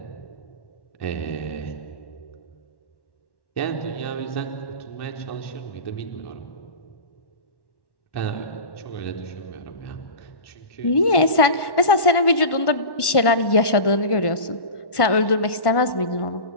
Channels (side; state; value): right; late; 1.1 ms